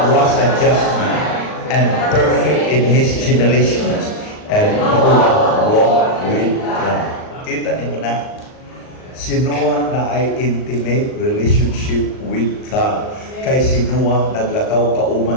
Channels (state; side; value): late; right; 38 ms